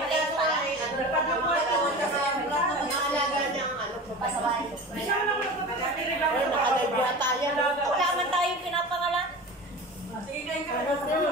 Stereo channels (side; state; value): both; normal; correlation 0.33